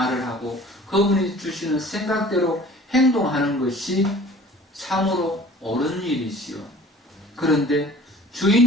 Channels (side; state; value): both; normal; correlation 0.47